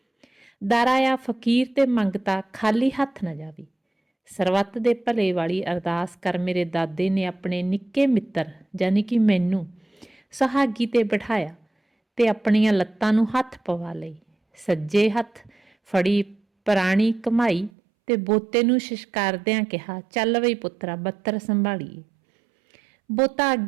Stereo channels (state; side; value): drops out; left; at 17.7 s